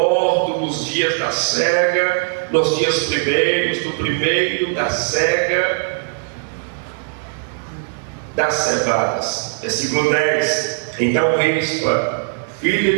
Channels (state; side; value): silent; left; digital silence